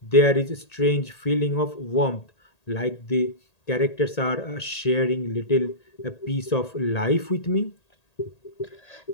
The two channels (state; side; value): late; right; 1.8 ms